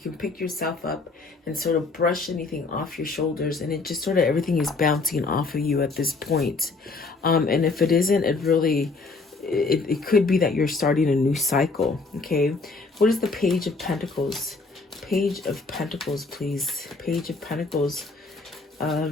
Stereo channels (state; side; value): quieter; right; 3.8 dB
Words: pick yourself up and sort of brush anything off your shoulders. And it just sort of everything is bouncing off of you at this point. And if it isn't, it could be that you're starting a new cycle. Okay. What is the Page of Pentacles? Page of Pentacles, please. Page of Pentacles.